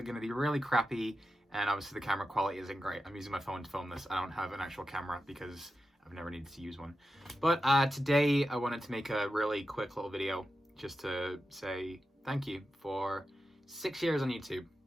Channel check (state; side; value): normal; both; correlation 0.91